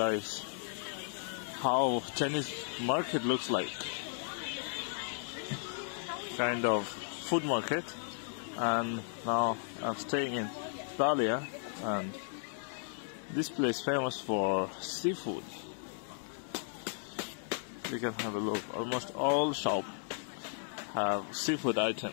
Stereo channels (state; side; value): silent; right; digital silence